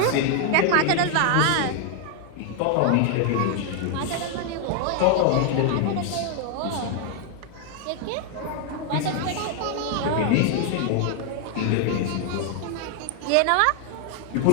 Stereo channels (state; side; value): different; both; correlation 0.00